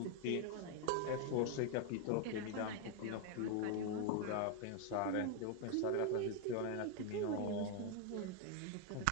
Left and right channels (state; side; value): different; both; correlation 0.01